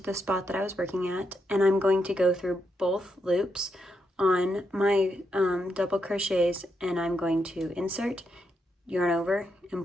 the spot that I was working at, and I'm going to go through both loops on my double crochets, and I'm going to insert, yarn over,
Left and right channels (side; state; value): both; normal; correlation 0.81